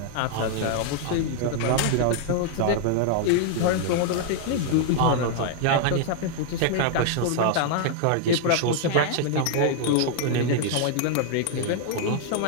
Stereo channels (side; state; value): both; different; correlation 0.00